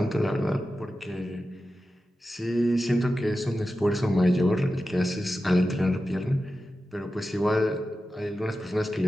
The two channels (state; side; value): normal; both; correlation 0.92